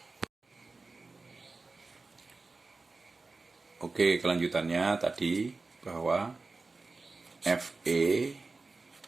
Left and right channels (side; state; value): left; quieter; 3.8 dB